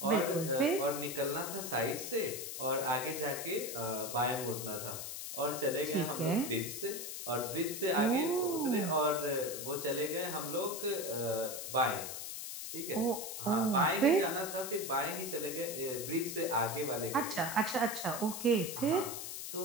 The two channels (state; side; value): noise; left; hiss, 6 dB below the sound